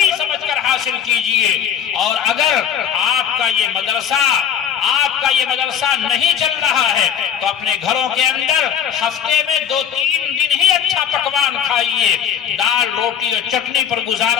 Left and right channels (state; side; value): quieter; right; 8.3 dB